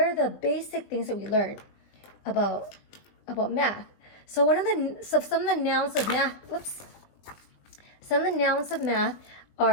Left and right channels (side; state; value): right; late; 20 ms